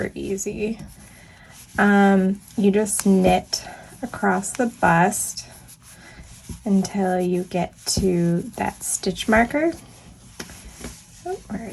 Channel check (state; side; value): identical; both; correlation 1.00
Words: easy. You just knit across the bust until you get to that stitch marker. Oh, where